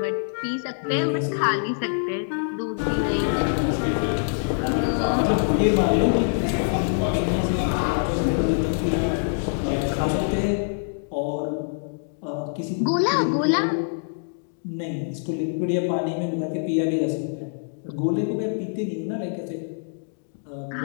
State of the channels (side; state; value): right; silent; digital silence